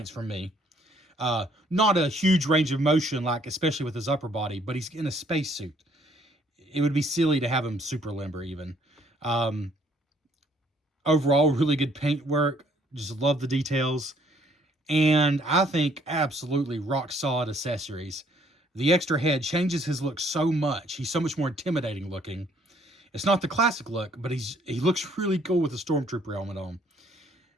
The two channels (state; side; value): normal; both; correlation 0.64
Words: from me. Not a huge range of motion, like especially with his upper body, but he's in a spacesuit. It would be silly to have him super limber even. Overall, really good paint work. Just love the details. And I think absolutely rock solid accessories. The extra head changes his look so much. He's so much more intimidating looking. It's not the classic look, but he looks really cool with the Stormtrooper helmet on.